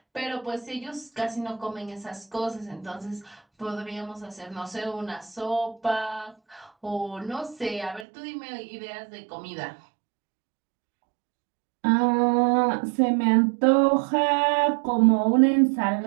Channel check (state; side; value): drops out; left; at 8.1 s